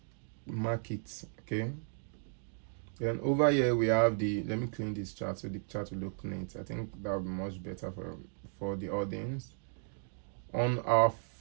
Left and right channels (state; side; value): silent; left; digital silence